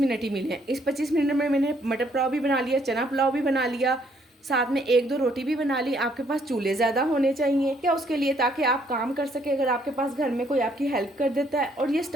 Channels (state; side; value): normal; both; correlation 0.68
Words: ही मिले हैं। इस 25 मिनट में मैंने मटर पुलाव भी बना लिया, चना पुलाव भी बना लिया, साथ में 1-2 रोटी भी बना ली। आपके पास चूल्हे ज़्यादा होने चाहिए क्या उसके लिए, ताकि आप काम कर सके। अगर आपके पास घर में कोई आपकी हेल्प कर देता है, और ये